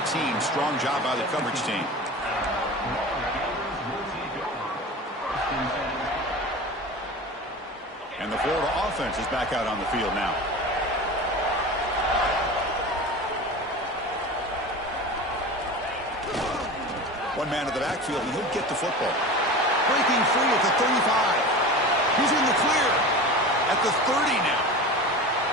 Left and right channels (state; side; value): normal; both; correlation 0.32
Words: Strong job by the coverage team. And the Florida offense is back out on the field now. One man at the backfield, and he'll get the football. Breaking free at the 35. He's in the clear at the 30 now.